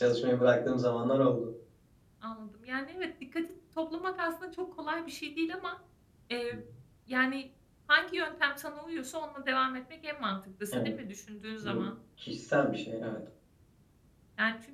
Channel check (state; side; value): identical; both; correlation 1.00